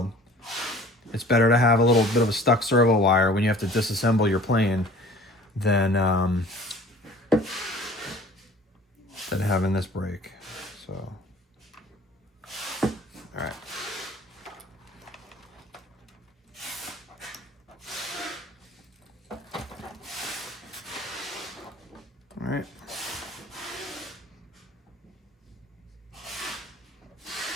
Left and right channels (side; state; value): both; normal; correlation 0.47